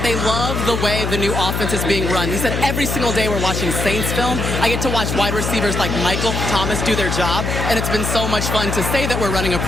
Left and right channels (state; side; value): noise; left; hum, 2 dB below the sound